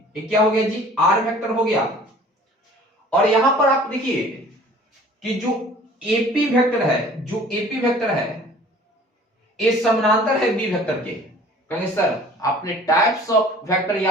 ये क्या हो गया जी आर वेक्टर हो गया। और यहां पर आप देखिए कि जो एपी वेक्टर है, जो एपी वेक्टर है ये समानांतर है बी वेक्टर के। कहेंगे सर आपने टाइप्स ऑफ वेक्टर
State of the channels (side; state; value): both; normal; correlation 0.49